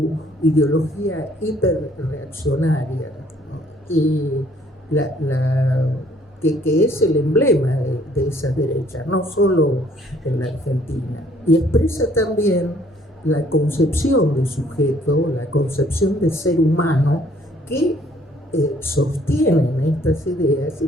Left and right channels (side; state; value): both; normal; correlation 0.61